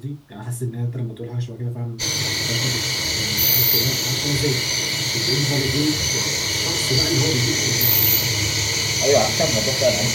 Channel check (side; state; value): both; identical; correlation 1.00